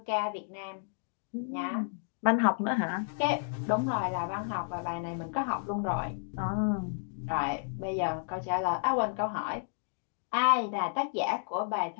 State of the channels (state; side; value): silent; right; digital silence